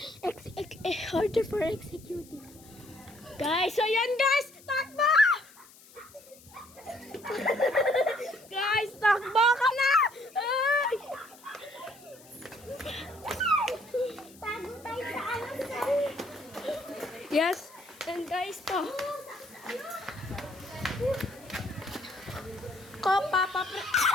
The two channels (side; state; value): left; noise; hiss, 23 dB below the sound